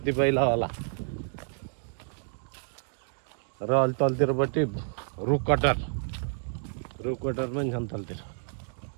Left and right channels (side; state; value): left; silent; 58 dB below the other